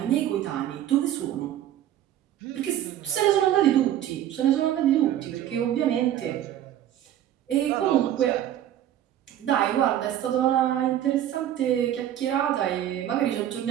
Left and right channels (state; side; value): quieter; left; 11.6 dB